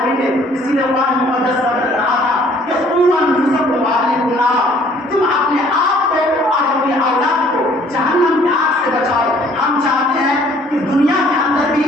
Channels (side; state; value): both; normal; correlation 0.58